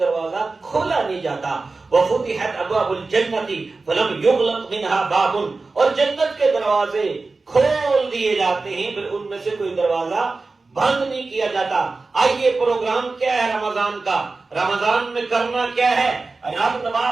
کھولا نہیں جاتا۔ وفتحت ابواب الجنت فلم یغلق منها باب، اور جنت کے دروازے کھول دیے جاتے ہیں، پھر ان میں سے کوئی دروازہ بند نہیں کیا جاتا۔ آئیے پروگرام کیا ہے رمضان کا؟ رمضان میں کرنا کیا ہے؟ رب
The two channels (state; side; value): quieter; left; 3.8 dB